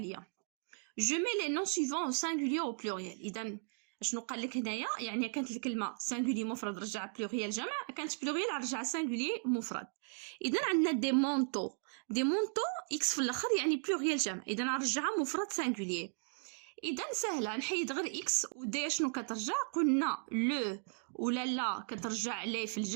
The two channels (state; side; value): silent; left; 54 dB below the other